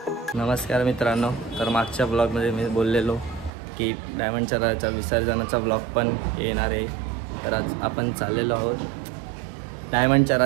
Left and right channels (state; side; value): drops out; left; at 3.5 s